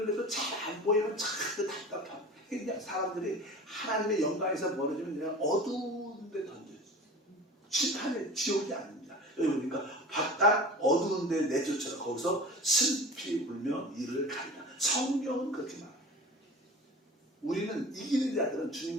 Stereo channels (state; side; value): normal; both; correlation 0.37